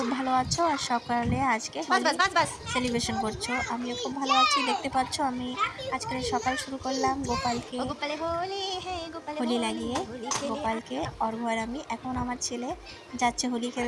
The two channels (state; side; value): identical; both; correlation 1.00